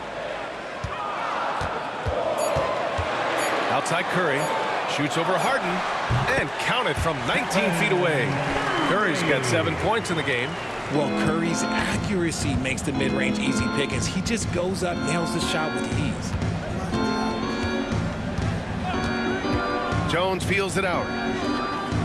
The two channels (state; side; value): identical; both; correlation 1.00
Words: Outside Curry. Shoots over Harden. And counted from 19 feet away. Curry's got 7 points in the game. Well, Curry's accuracy makes the mid-range easy pickings. He just goes up, nails the shot with ease. Jones feels it out.